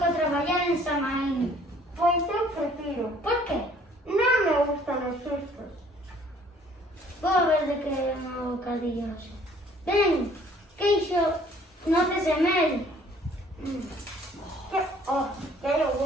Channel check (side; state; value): both; normal; correlation 0.58